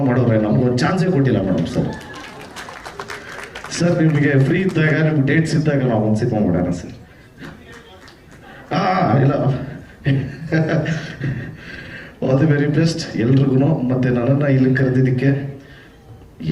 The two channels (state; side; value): identical; both; correlation 1.00